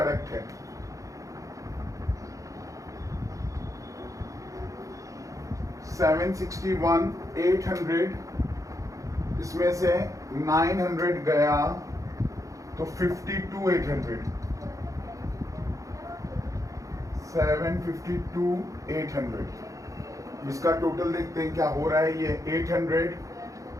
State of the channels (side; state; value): left; late; 0.16 ms